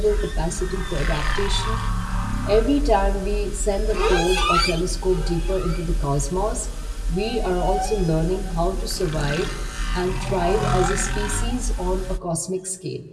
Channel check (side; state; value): both; identical; correlation 1.00